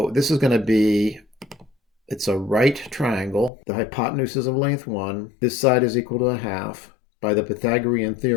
this is going to be, it's a right triangle. The hypotenuse is of length 1. This side is equal to a half. By the Pythagorean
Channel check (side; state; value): right; drops out; at 3.5 s